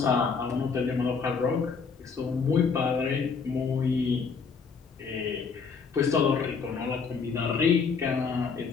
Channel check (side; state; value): right; quieter; 5.4 dB